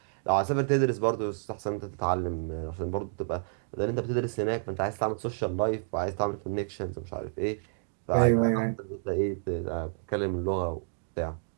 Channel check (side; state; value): left; silent; digital silence